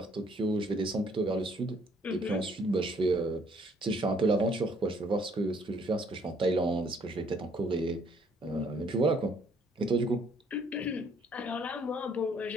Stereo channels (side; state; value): both; normal; correlation 0.64